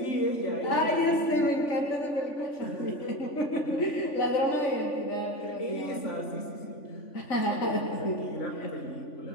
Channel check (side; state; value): right; late; 3.5 ms